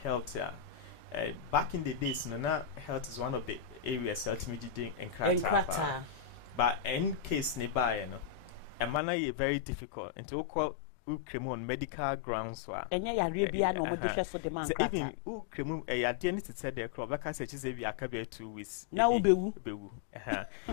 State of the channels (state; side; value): drops out; right; at 9.0 s